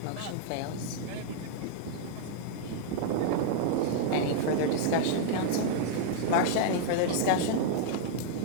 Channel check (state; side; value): different; both; correlation -0.01